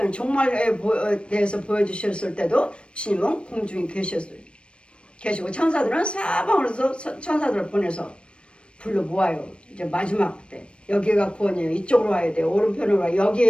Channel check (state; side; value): late; right; 0.058 ms